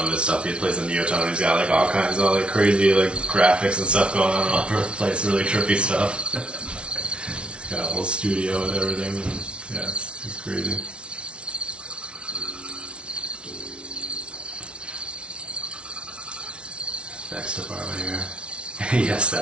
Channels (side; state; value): left; late; 0.058 ms